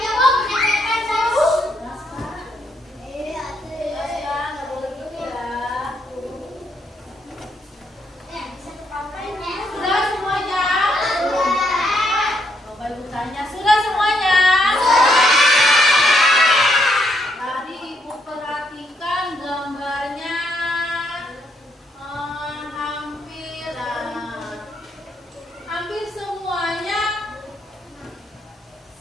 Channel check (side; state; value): both; normal; correlation 0.75